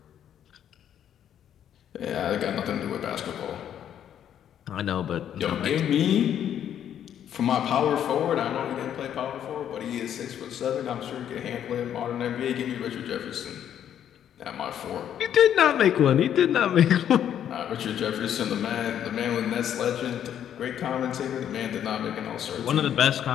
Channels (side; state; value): right; quieter; 9.9 dB